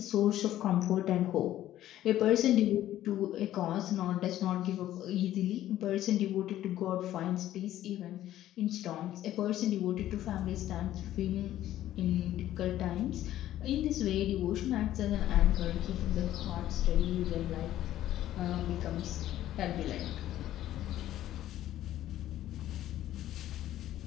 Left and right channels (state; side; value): quieter; right; 13.2 dB